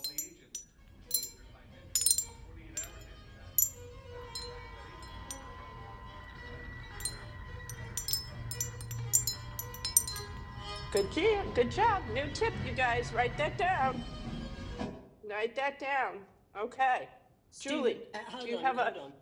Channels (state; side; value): identical; both; correlation 1.00